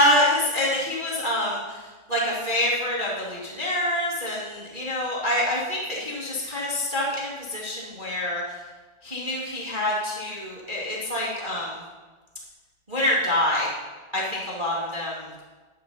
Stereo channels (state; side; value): late; left; 1.4 ms